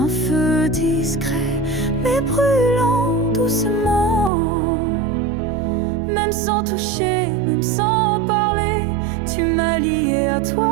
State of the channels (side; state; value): left; drops out; at 4.3 s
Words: feu discret mais brûlant doucement. Même sans toucher, même sans parler, tu m'as lié à